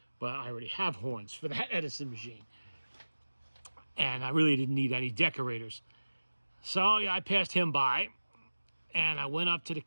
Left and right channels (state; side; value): inverted; both; correlation -1.00